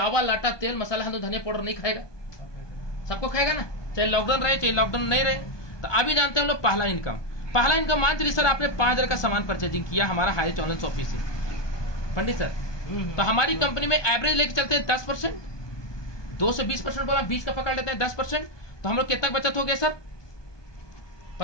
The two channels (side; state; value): right; late; 1.2 ms